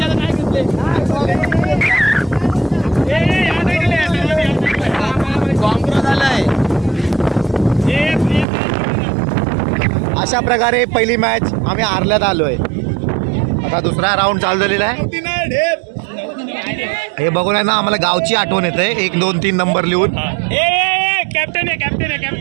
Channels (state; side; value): drops out; left; at 8.5 s